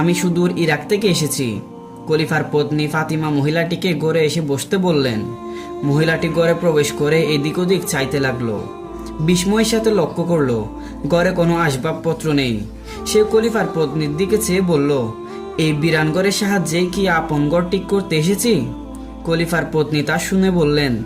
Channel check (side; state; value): both; identical; correlation 1.00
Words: সুদূর ইরাক থেকে এসেছি। খলিফার পত্নী ফাতিমা মহিলাটিকে ঘরে এসে বসতে বললেন। মহিলাটি ঘরে প্রবেশ করে এদিক ওদিক চাইতে লাগলো। বিস্ময়ের সাথে লক্ষ্য করলো ঘরে কোনো আসবাবপত্র নেই। সে খলিফার পত্নীর দিকে চেয়ে বলল, এই বিরানগড়ের সাহায্যে কি আপন ঘর ঠিক করতে এসেছি। খলিফার পত্নী তা শুনে বললেন,